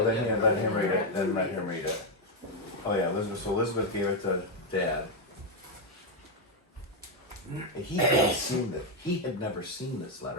then yeah, let him read it. Then let him read it. Oh yeah, Elizabeth. So Elizabeth gave it to Dad. He hadn't seen it. He had never seen this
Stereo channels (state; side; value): normal; both; correlation 0.03